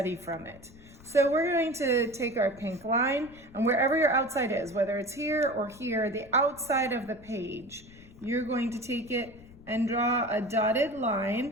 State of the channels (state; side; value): noise; left; rumble, 21 dB below the sound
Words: from it. So we're going to take our pink line, and wherever your outside is, whether it's here or here, the outside of the page, you're going to take it and draw a dotted